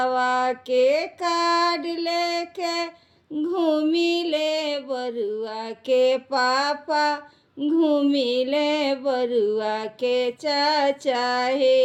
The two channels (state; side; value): identical; both; correlation 1.00